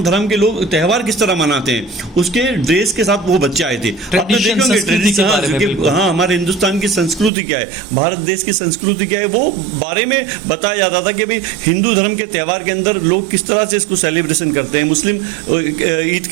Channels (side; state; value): left; drops out; at 7.3 s